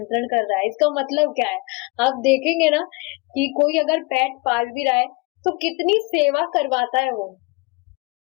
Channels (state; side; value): quieter; right; 26.9 dB